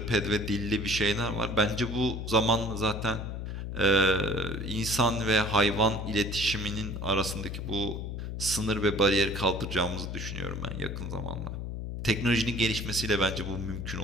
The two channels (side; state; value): left; noise; hum, 5 dB below the sound